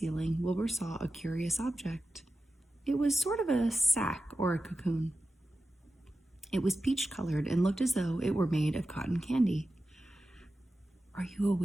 Wilbur saw a curious object. It was sort of a sack or a cocoon. It was peach-colored and looked as though it were made of cotton candy. "Are you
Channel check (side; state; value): both; normal; correlation 0.92